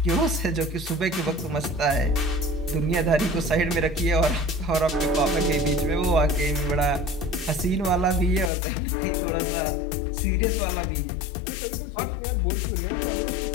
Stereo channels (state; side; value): drops out; right; at 8.5 s